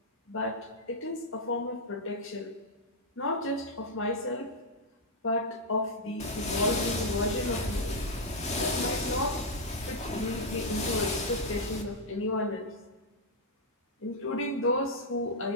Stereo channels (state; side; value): normal; both; correlation -0.03